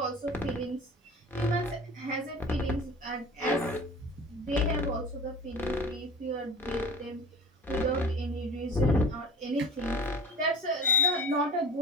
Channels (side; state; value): both; normal; correlation 0.37